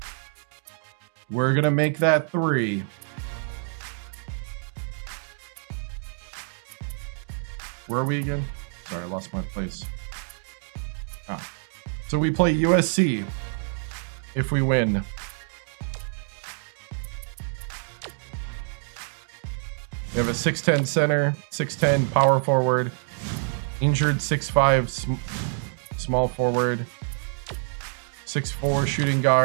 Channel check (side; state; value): left; silent; 60 dB below the other